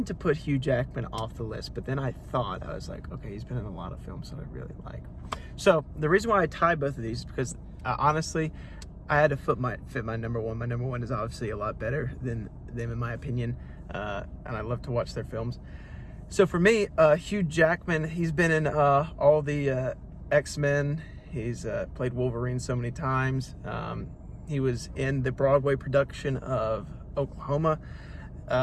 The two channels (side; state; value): both; identical; correlation 1.00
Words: to put Hugh Jackman off the list, but then I was like, okay, he's been in a lot of films that I really like. So the reason why I tie both of these is because honestly, I had to fit my number 1. My number 1 is obviously a lot better than them in my opinion, and I love to watch their films. So for me, Hugh Jackman, he's been in all the X-Men. He's played Wolverine so many times. He was in the Broadway production of Oklahoma.